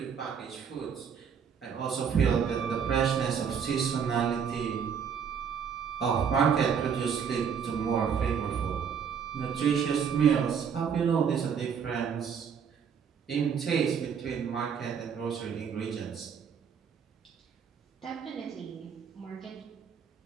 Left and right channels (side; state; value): left; quieter; 7.1 dB